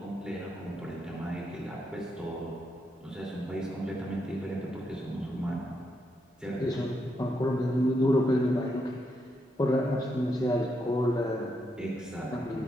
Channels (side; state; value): both; normal; correlation 0.81